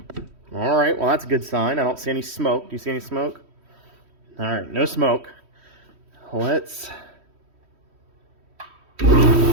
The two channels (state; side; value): late; left; 3.1 ms